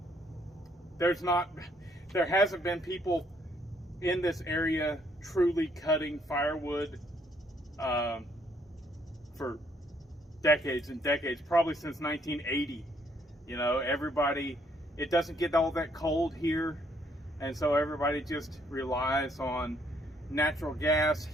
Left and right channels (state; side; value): normal; both; correlation 0.68